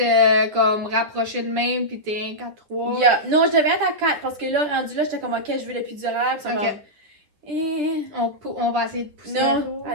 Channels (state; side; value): late; left; 9.7 ms